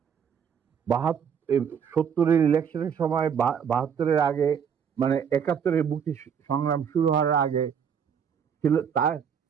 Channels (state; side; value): quieter; left; 7.5 dB